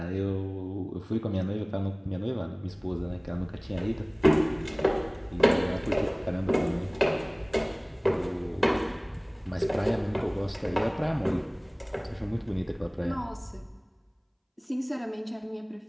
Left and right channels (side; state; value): both; identical; correlation 1.00